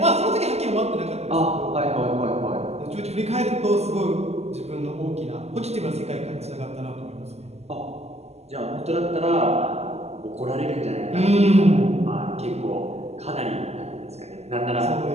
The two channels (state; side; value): late; left; 0.31 ms